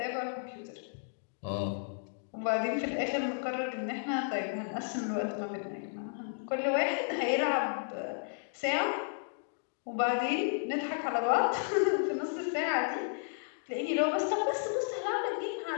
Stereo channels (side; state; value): right; silent; digital silence